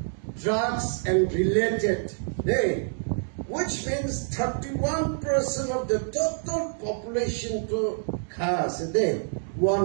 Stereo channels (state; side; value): silent; left; digital silence